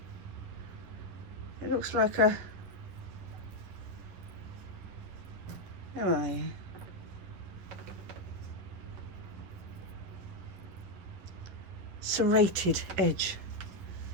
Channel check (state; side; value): late; left; 11 ms